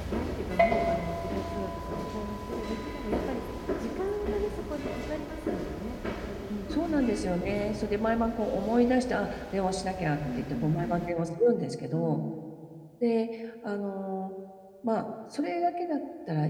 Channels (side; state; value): both; identical; correlation 1.00